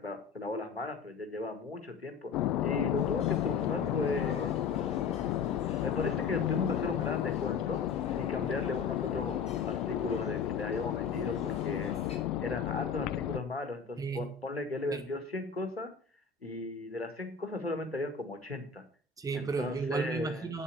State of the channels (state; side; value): quieter; right; 5.4 dB